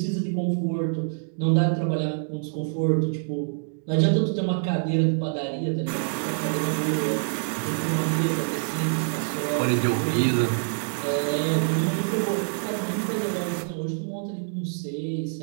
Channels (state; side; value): silent; left; digital silence